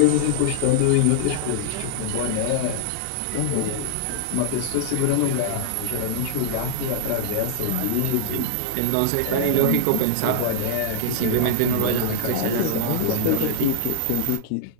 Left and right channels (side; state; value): both; different; correlation -0.01